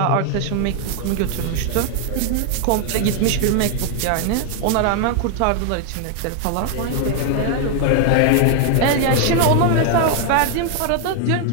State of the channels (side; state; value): both; different; correlation 0.00